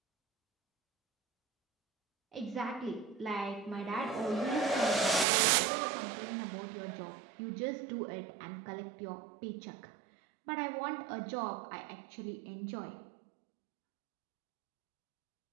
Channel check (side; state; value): left; drops out; at 5.2 s